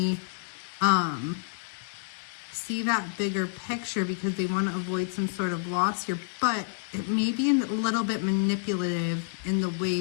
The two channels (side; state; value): right; silent; digital silence